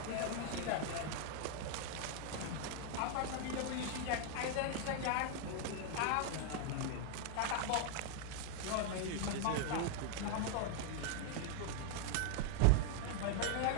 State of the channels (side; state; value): both; different; correlation 0.00